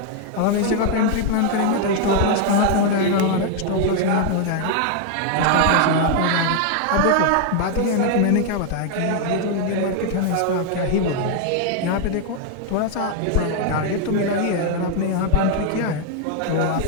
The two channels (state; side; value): different; both; correlation 0.00